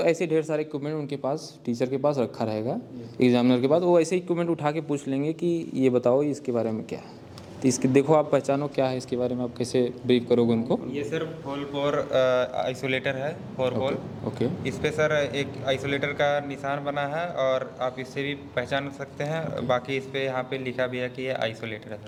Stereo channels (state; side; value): identical; both; correlation 1.00